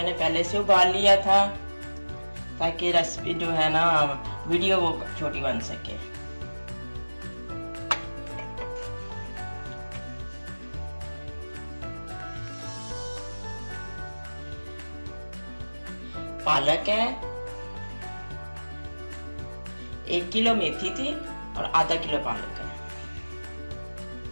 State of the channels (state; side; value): inverted; both; correlation -1.00